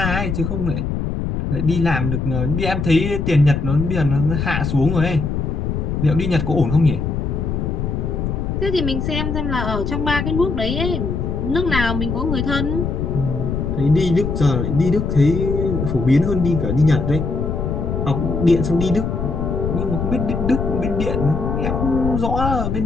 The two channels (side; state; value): left; noise; rumble, 2 dB below the sound